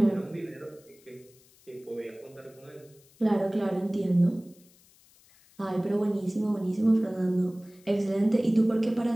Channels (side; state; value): left; noise; hiss, 29 dB below the sound